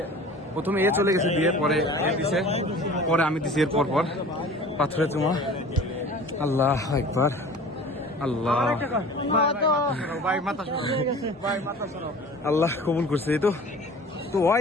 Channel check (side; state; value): both; normal; correlation 0.43